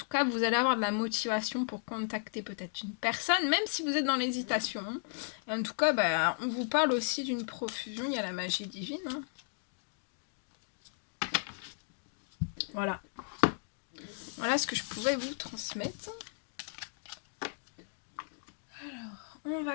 cas, vous allez avoir de la motivation pour contacter peut-être une personne, même si vous êtes dans l'hésitation. Et en tout cas, on vous parle aussi d'une profusion. Il y a la magie divine. Hein. Voilà. Voilà ce que je pouvais vous transmettre. Alors, on va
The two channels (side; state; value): right; silent; digital silence